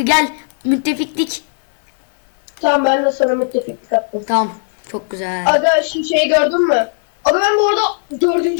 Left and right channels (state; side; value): silent; right; digital silence